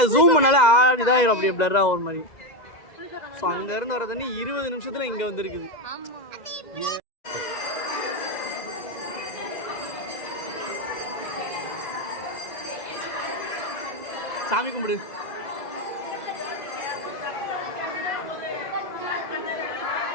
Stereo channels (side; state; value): right; late; 2.0 ms